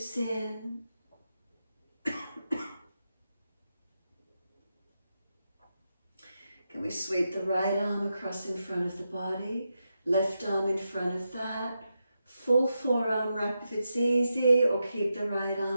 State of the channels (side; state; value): both; inverted; correlation -0.87